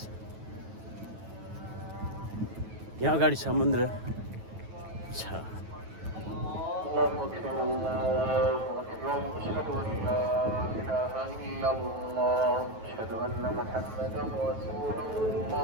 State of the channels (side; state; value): left; late; 9.2 ms